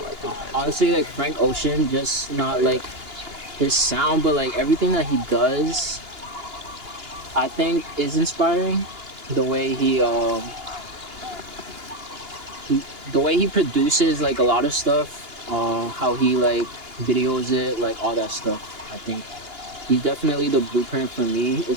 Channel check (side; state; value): left; late; 2.9 ms